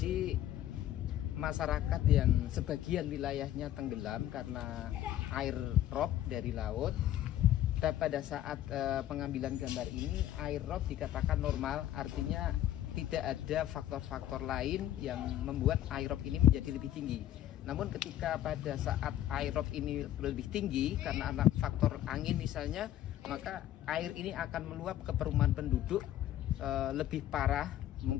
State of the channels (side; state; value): right; quieter; 12.7 dB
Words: masyarakat yang sebagian wilayahnya tenggelam karena air rob dari laut. Dan pada saat pengambilan gambar ini, air rob dikatakan normal, artinya tidak ada faktor-faktor lain yang membuat air rob ini menjadi lebih tinggi. Namun ketika pada saat air rob ini lebih tinggi karena ada faktor angin misalnya, maka air ini akan meluap ke perumahan penduduk lebih parah,